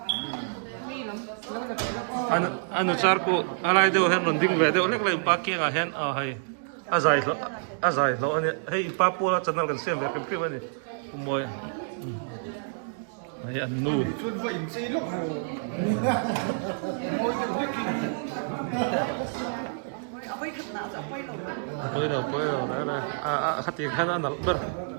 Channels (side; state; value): left; silent; digital silence